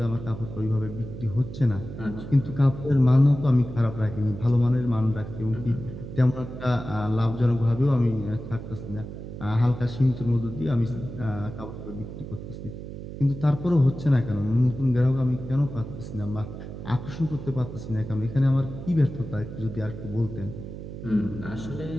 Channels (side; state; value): right; noise; hum, 10 dB below the sound